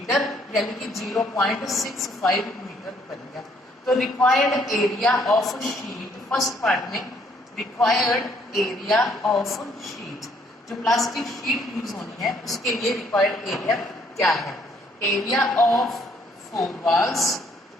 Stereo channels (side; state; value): both; normal; correlation 0.66